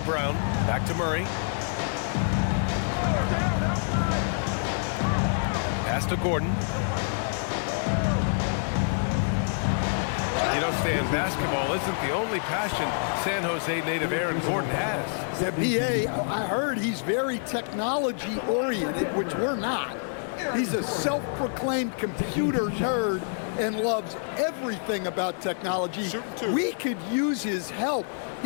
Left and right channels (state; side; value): silent; right; 60 dB below the other